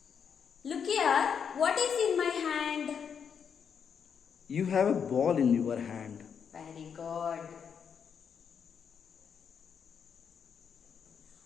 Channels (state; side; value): quieter; right; 7.1 dB